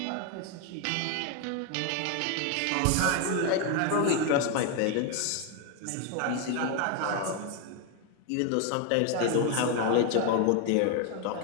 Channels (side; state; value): both; different; correlation 0.01